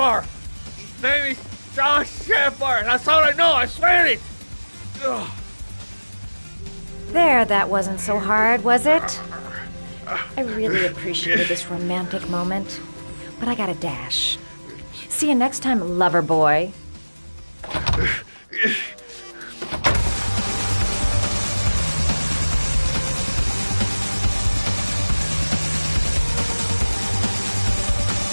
His name is John Shepard. That's all I know. I swear it. Ugh. There, that wasn't so hard, was it? I really appreciated this romantic moment, but I gotta dash. See you next time, lover boy.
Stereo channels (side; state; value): both; inverted; correlation -1.00